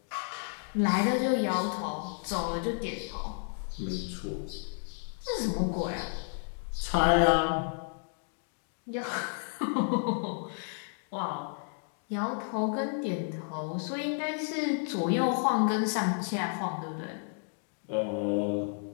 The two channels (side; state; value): right; silent; 57 dB below the other